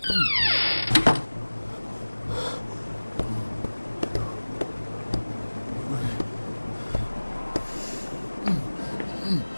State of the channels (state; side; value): inverted; both; correlation -1.00